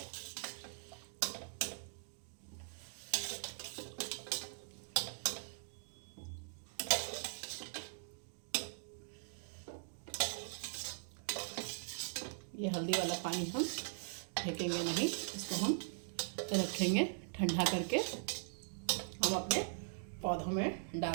ये हल्दी वाला पानी हम फेंकेंगे नहीं, इसको हम रखेंगे ठंडा करके, हम अपने पौधों में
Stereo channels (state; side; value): silent; left; digital silence